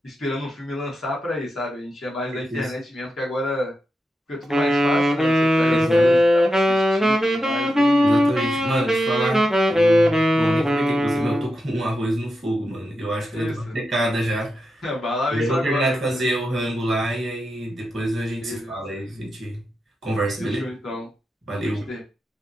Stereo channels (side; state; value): both; normal; correlation 0.89